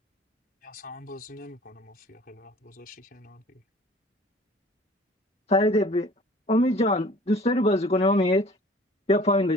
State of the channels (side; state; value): both; normal; correlation 0.49